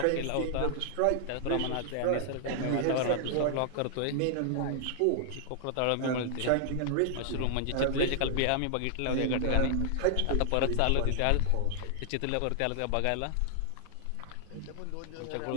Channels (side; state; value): both; different; correlation 0.00